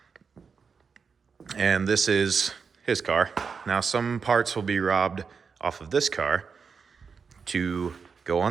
And this is his car. Now, some parts will be robbed off of this car to go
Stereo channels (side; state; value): left; quieter; 5.7 dB